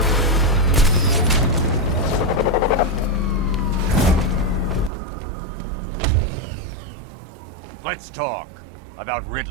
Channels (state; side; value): drops out; left; at 4.9 s